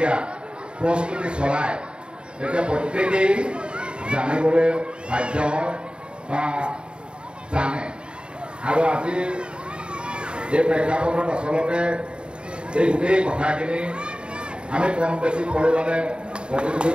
প্ৰস্তুতি চলায় তেতিয়া প্ৰত্যেকেই জানিবলৈ বাধ্য হয় বা জানে। আৰু আজি এই প্ৰেক্ষাপটত আচলতে এই গোটেই কথাখিনি আমি কম বেছি পৰিমাণে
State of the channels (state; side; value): late; left; 0.052 ms